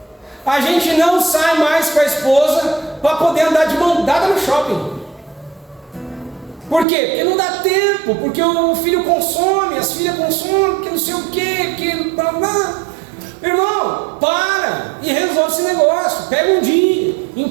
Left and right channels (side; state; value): left; drops out; at 6.9 s